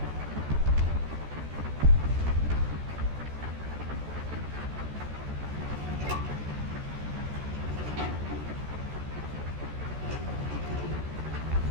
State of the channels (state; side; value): late; left; 14 ms